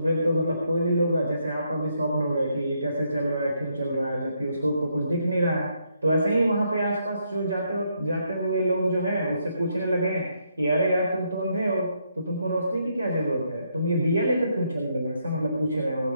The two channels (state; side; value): inverted; both; correlation -0.75